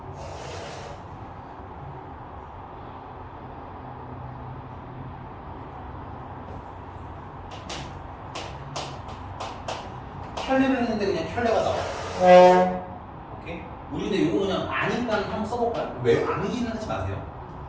켤레를 했는데 그냥 켤레가 나와. 오케이? 우리 근데 이거 그냥 아니까 한번 써볼까요? 왜 암기는 하지 마세요.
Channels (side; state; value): both; identical; correlation 1.00